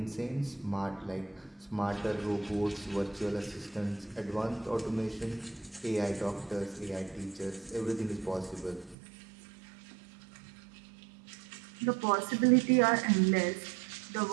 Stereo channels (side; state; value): left; drops out; at 9.0 s